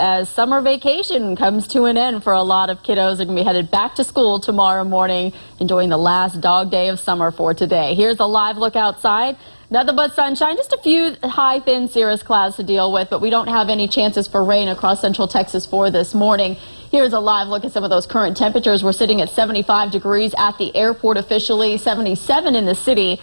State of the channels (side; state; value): both; inverted; correlation -1.00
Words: summer vacation comes to an end for a lot of kiddos. They're going to be headed back to school tomorrow morning, enjoying the last dog day of summer for today. Here's a live look outside. Nothing but sunshine, just a few high, thin cirrus clouds to deal with, but we don't have any chances for rain across Central Texas for this morning. Here's a live look at some of those current temperatures. We're sitting at 75 degrees at the airport officially, 77 in the city